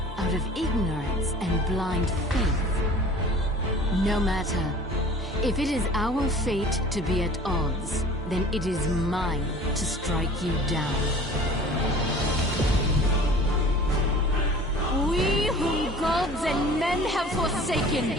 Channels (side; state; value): both; normal; correlation 0.45